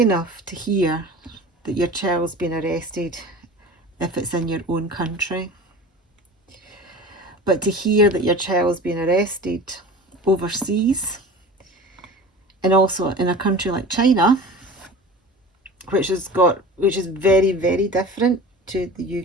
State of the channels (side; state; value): both; normal; correlation 0.36